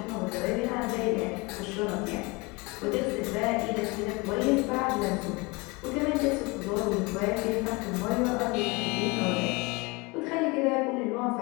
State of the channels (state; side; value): quieter; right; 26.2 dB